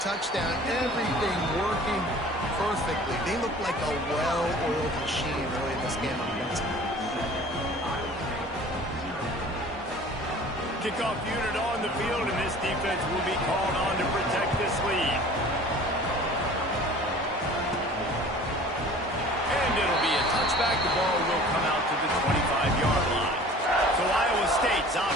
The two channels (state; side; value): normal; both; correlation 0.45